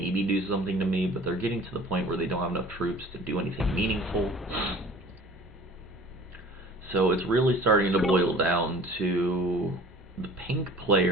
do something to me, but they're getting to the point where they don't have enough troops to do anything meaningful. So it's really starting to boil down to the pink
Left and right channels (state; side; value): normal; both; correlation 0.46